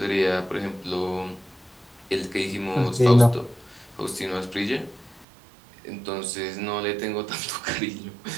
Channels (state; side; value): drops out; left; at 5.2 s